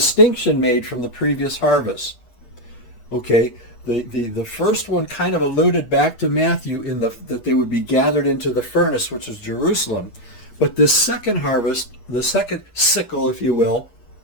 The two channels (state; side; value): late; right; 8.4 ms